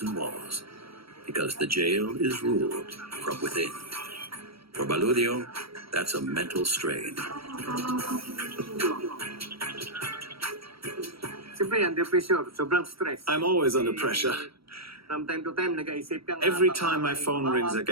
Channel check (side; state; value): left; late; 0.76 ms